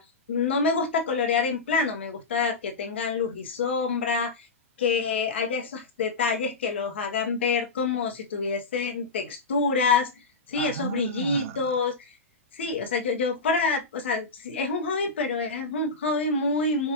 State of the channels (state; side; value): quieter; right; 3.8 dB